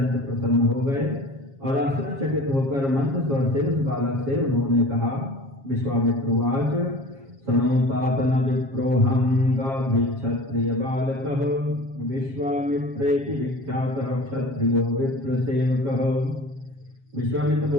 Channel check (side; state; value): left; late; 7.3 ms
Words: प्रसन्न हो गए और आश्चर्यचकित होकर मंद स्वर से उस बालक से उन्होंने कहा। विश्वामित्रवाच सनोतात न विप्रोहं गाधी क्षत्रिय बालकः विश्वामित्रेति विख्यातः क्षत्रियो विप्रसेवकः। विश्वामित्र